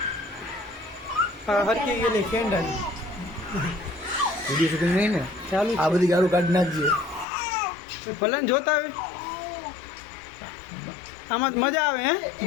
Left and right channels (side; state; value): right; drops out; at 7.2 s